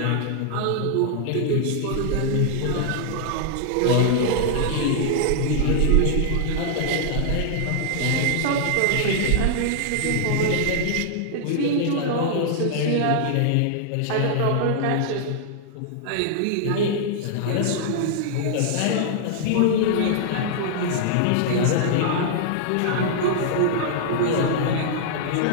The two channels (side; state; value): both; different; correlation -0.01